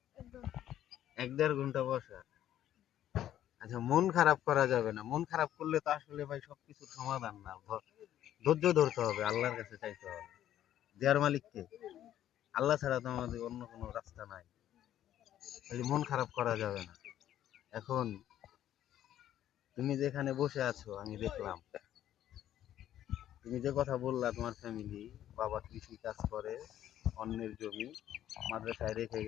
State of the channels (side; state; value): right; quieter; 11.8 dB